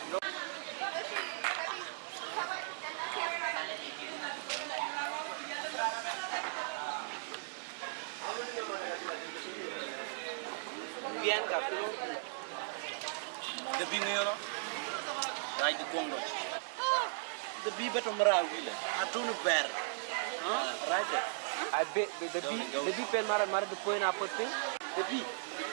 Biar kapu. The bing yo. Right the Congo. The bee betul merah gila. Atunu ber. Right. I bet the bee pen marah the point apa tu? The bee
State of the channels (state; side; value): silent; left; digital silence